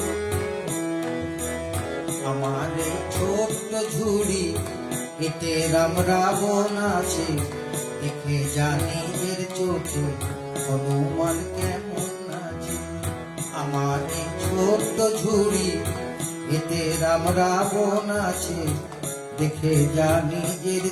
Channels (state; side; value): identical; both; correlation 1.00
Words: আমার এই ছোট্ট ঝুড়ি, এতে রাম রাবণ আছে, দেখে জানি এর চোখে হনুমান কেমন আছে। আমার এই ছোট্ট ঝুড়ি, এতে রাম রাবণ আছে, দেখে জানি এর